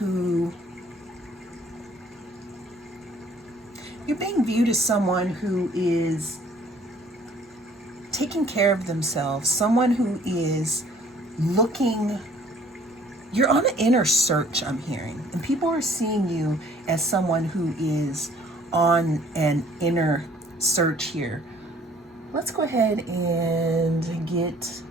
is taking care of themselves, someone who is looking, you're on an inner search, I'm hearing, and people are seeing you as someone who is on an inner search here. Let's go ahead and get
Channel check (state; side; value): normal; both; correlation 0.57